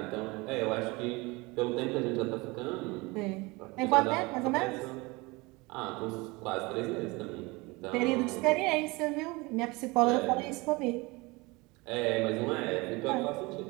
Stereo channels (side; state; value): left; quieter; 24.4 dB